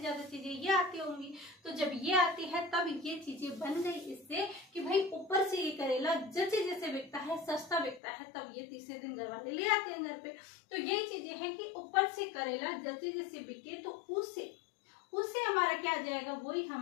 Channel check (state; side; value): drops out; right; at 8.0 s